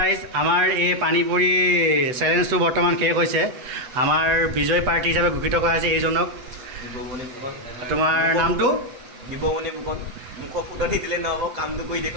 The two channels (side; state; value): left; late; 8.0 ms